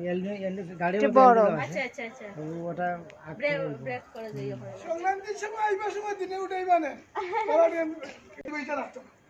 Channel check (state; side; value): identical; both; correlation 1.00